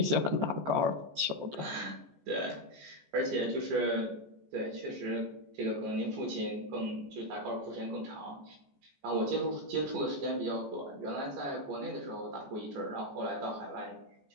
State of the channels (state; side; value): late; left; 14 ms